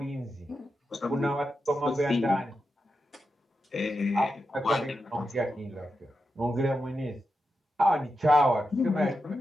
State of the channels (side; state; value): both; normal; correlation 0.88